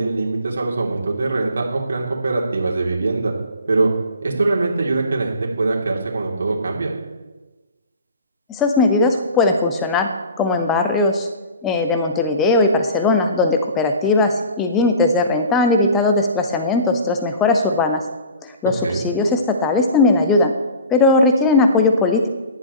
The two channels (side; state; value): both; inverted; correlation -0.39